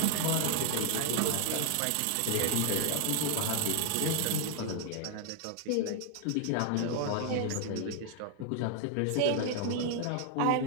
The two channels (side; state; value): both; different; correlation 0.00